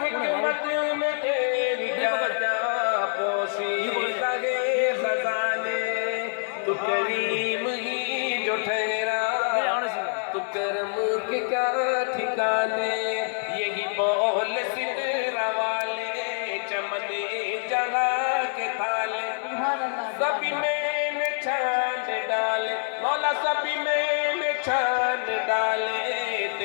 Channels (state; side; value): silent; right; 61 dB below the other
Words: حکمت میں تیری کیا کیا پوشیدہ ہے خزانے، تو کریم ہی جو ٹھہرا تو کرم کے کیا ٹھکانے، یہی بول سدرہ والے چمن جہاں کے تھالے، سبھی میں نے چھان ڈالے مولا، سبھی میں نے چھان ڈالے،